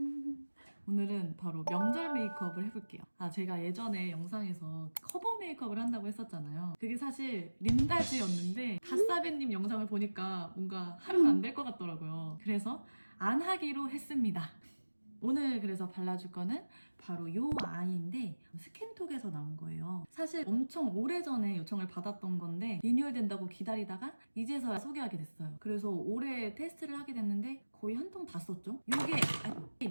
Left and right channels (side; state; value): both; inverted; correlation -1.00